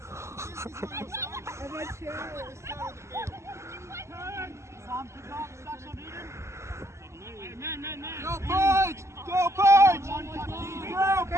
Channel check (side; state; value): left; late; 0.13 ms